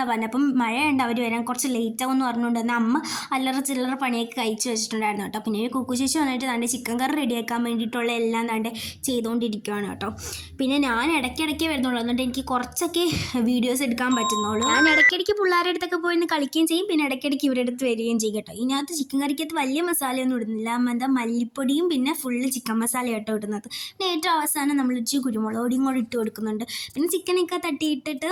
പറഞ്ഞത്. അപ്പം മഴയുണ്ട്, അവർ വരാൻ കുറച്ച് ലേറ്റ് ആകുമെന്ന് പറഞ്ഞുകൊണ്ട് തന്നെ അമ്മ അല്ലറ ചില്ലറ പണിയൊക്കെ കഴിച്ച് വെച്ചിട്ടുണ്ടായിരുന്നു കേട്ടോ. പിന്നെ കുക്കുചേച്ചി വന്നിട്ട് തൻ്റെ ചിക്കൻ കറി റെഡിയാക്കാൻ വേണ്ടിയിട്ടുള്ള എല്ലാം തൻ്റെ ചെയ്തുകൊണ്ടിരിക്കുകയാണ് കേട്ടോ. പിന്നെ ഞാൻ ഇടയ്ക്കിടയ്ക്ക് വരുന്നുള്ളൂ, എന്നിട്ട് എനിക്ക് കുറച്ചൊക്കെ വീഡിയോസ് എടുക്കാൻ പറ്റുന്നുള്ളൂ. ഞാൻ ഇടയ്ക്കിടയ്ക്ക് പിള്ളേരുടെ അടുത്തൊക്കെ പോയി കളിക്കുകയും ചെയ്യും, പിന്നെ ഇടയ്ക്കിടയ്ക്ക് ഇവരുടെ അടുത്ത് വരികയും ചെയ്യും കേട്ടോ. ഇതിനകത്ത് ചിക്കൻ കറിക്കകത്ത് വലിയ മസാലയൊന്നും ഇടുന്നില്ല, എന്താ മല്ലിപ്പൊടിയും പിന്നെ ഫുള്ള് ചിക്കൻ മസാല കേട്ടോ ഇടുന്നത്. പിന്നെ ഏറ്റവും അവസാനം നമ്മൾ ഇച്ചിരി കുരുമുളക് പൊടിയും കൂടി ഇട്ട് കൊടുക്കുന്നുണ്ട്. പിന്നെ ചിക്കനൊക്കെ തട്ടിയിട്ടിട്ട്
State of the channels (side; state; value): both; identical; correlation 1.00